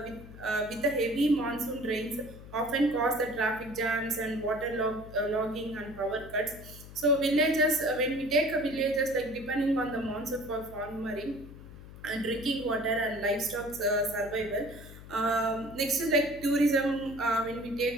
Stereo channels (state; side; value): noise; left; hum, 16 dB below the sound